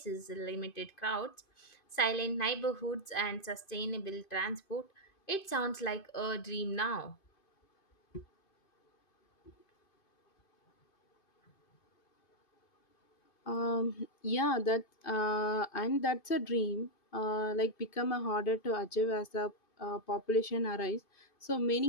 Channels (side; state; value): right; late; 2.5 ms